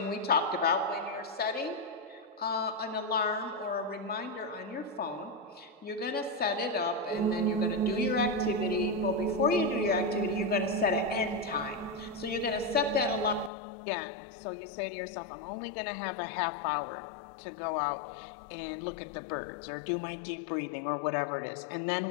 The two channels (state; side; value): drops out; right; at 13.5 s